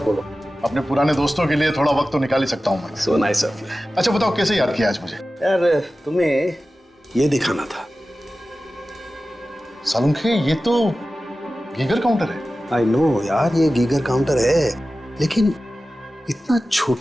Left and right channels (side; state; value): both; normal; correlation 0.95